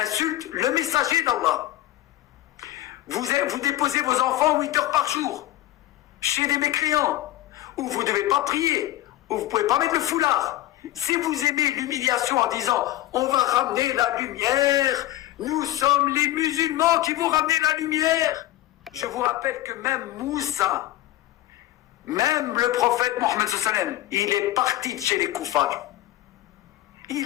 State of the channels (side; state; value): right; quieter; 15.2 dB